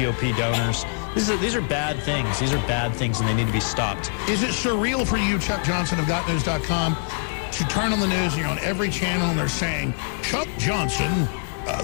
donors. These are bad things. These are bad things, and they need to be stopped. Is it surreal for you, Chuck Johnson of GotNews.com, to turn on the news and you're on every channel and they're saying, Chuck Johnson...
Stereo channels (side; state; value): right; silent; 62 dB below the other